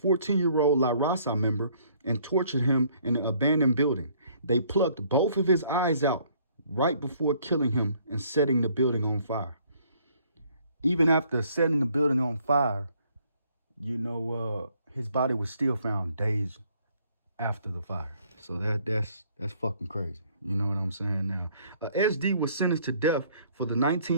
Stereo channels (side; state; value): both; inverted; correlation -0.63